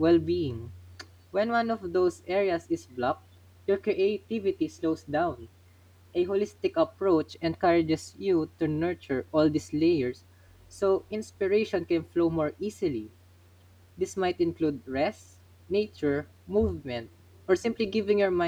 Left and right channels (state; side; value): identical; both; correlation 1.00